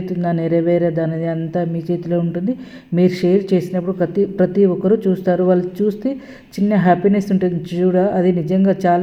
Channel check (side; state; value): both; identical; correlation 1.00